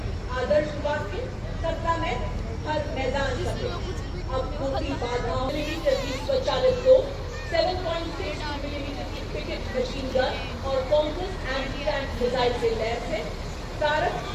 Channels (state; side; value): identical; both; correlation 1.00